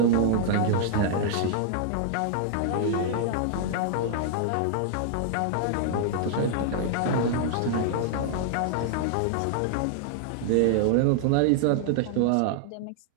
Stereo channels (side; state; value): both; different; correlation -0.01